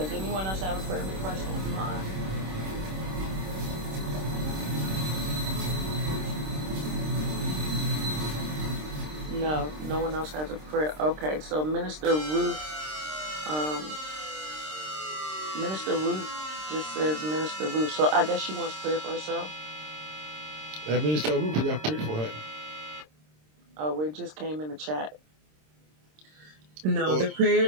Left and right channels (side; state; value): left; late; 26 ms